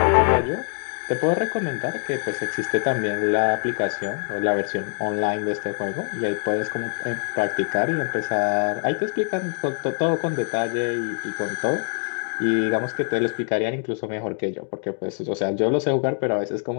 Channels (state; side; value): silent; right; digital silence